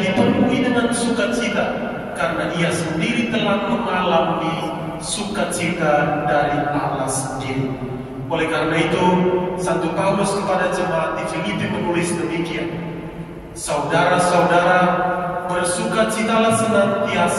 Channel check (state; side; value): identical; both; correlation 1.00